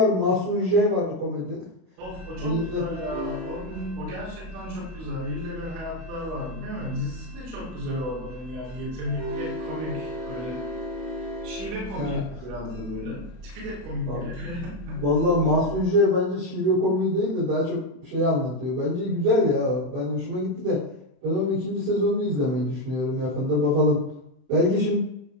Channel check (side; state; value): left; late; 31 ms